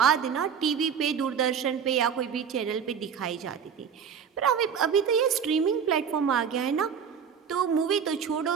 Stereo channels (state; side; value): quieter; left; 7.2 dB